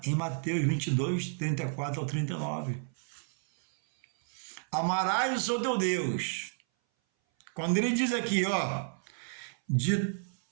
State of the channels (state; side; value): silent; left; 57 dB below the other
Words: em Mateus 22, 34 ao 39. Amarás o seu teu Deus. Quando ele diz aqui, ó, de